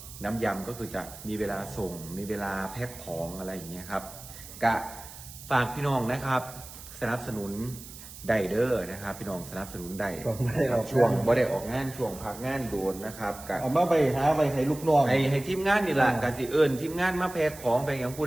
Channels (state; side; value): noise; right; hiss, 15 dB below the sound